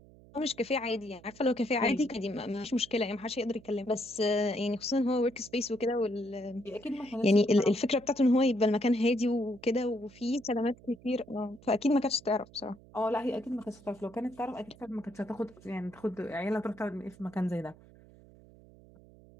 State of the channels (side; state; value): right; noise; hum, 23 dB below the sound